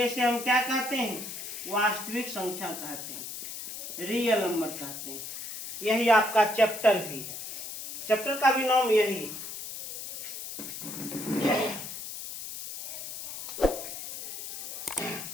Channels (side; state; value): left; noise; hiss, 8 dB below the sound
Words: इसे हम क्या कहते हैं? वास्तविक संख्या कहते हैं, रियल नंबर कहते हैं। यही आपका चैप्टर भी है, चैप्टर का भी नाम यही।